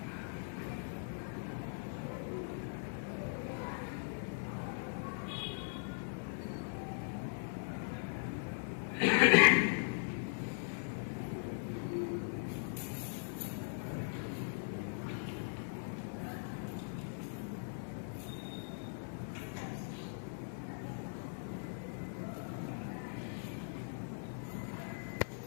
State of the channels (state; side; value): silent; right; digital silence